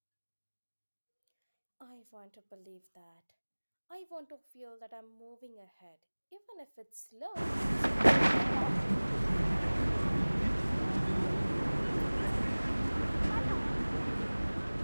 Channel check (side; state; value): both; inverted; correlation -1.00